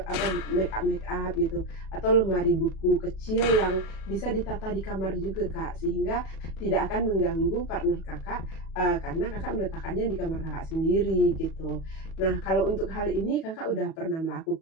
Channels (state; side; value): late; right; 37 ms